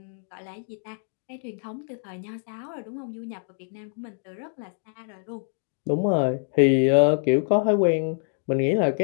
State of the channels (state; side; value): silent; right; 59 dB below the other